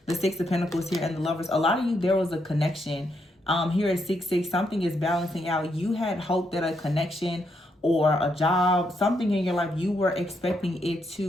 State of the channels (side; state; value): both; normal; correlation 0.78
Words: The Six of Pentacles here and the Lovers. A lot of you, there was a connection. Here at 6-6, something is balancing out. You had hope that a connection or a job, something in your life, you were expecting it